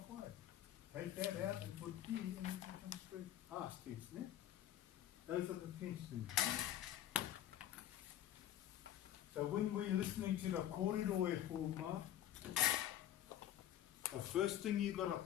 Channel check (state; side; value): quieter; right; 11.7 dB